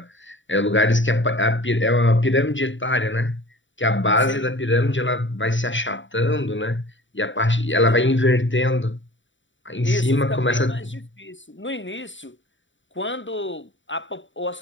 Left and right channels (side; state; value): right; late; 0.55 ms